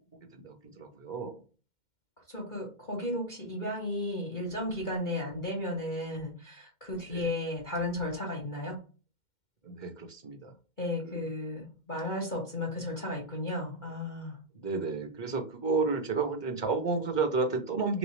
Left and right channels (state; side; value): late; right; 2.1 ms